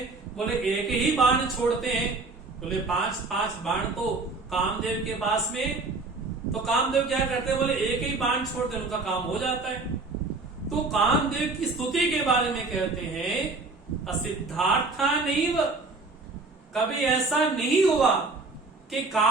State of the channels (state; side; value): quieter; left; 3.6 dB